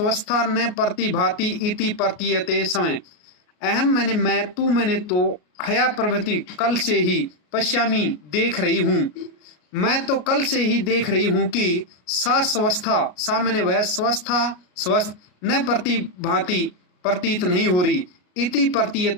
न प्रतिभाति इति प्रतीयते समय। अहम मैंने मैं, तू मैंने तो, हया प्रभृति कल से ही, पश्यामी देख रही हूँ, मैं तो कल से ही देख रही हूँ कि सा स्वस्था, सा मैंने वह, स्वस्था स्वस्थ, न प्रतिभाति प्रतीत नहीं हो रही, इति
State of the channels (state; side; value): late; right; 33 ms